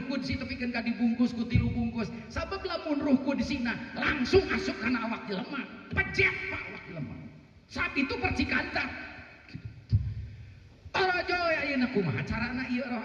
Qudsi tepikeun ka dibungkus ku 3 bungkus. Sabab lamun Ruh Qudsina langsung asup kana awak jelema. Pejek Pak awak jelema. Saat itu percikan Tarajo ayeuna kumaha carana ieu roh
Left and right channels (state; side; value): identical; both; correlation 1.00